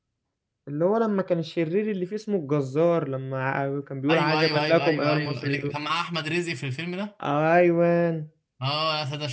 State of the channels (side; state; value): both; identical; correlation 1.00